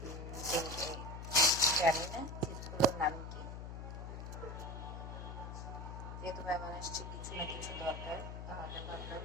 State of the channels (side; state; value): left; noise; hum, 8 dB below the sound